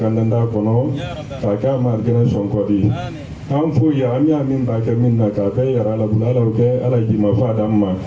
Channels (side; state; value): both; identical; correlation 1.00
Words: nda ko no ka ka mar gena son ko di am fu ya am ya min ba ka min na ka be yara la bulala oke ala ji ma fa damma